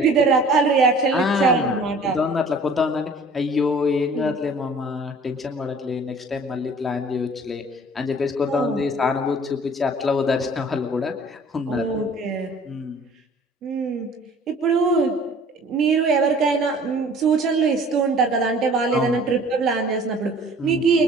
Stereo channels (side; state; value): both; normal; correlation 0.50